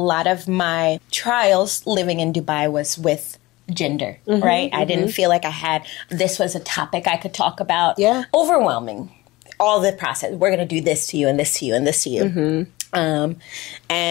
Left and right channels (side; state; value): right; quieter; 20.1 dB